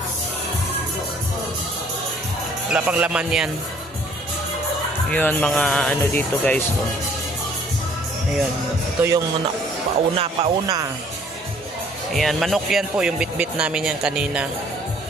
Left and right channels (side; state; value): both; normal; correlation 0.58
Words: Wala pang laman yan. Yun, mga ano dito guys. Oh. Ayun. Ito yung pauna. Ayan, manok yan po. Yung bit-bit namin yan kanina.